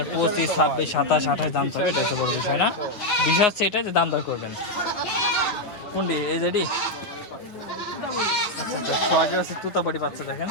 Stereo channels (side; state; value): right; late; 9.8 ms